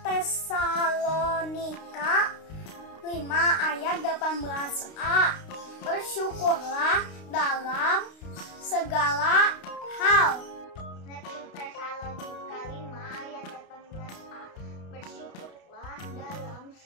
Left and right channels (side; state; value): right; late; 32 ms